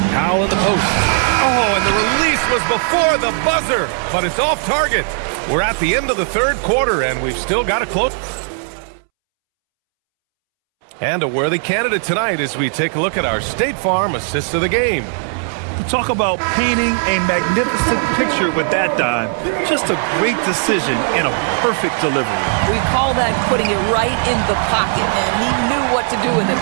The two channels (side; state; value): left; silent; 67 dB below the other